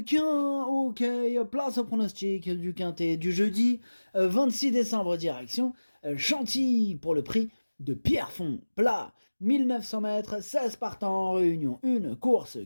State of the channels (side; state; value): both; inverted; correlation -1.00